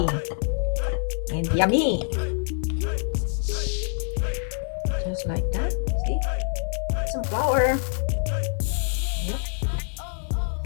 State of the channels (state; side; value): silent; right; 59 dB below the other